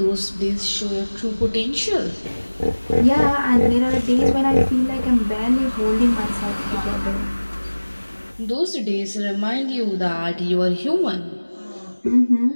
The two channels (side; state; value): both; inverted; correlation -1.00